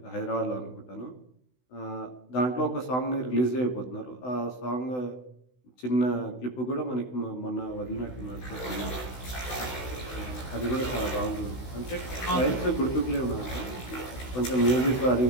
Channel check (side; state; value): right; late; 16 ms